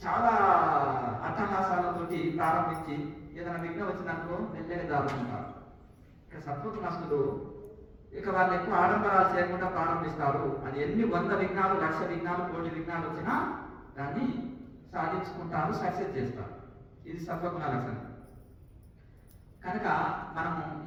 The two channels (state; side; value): identical; both; correlation 1.00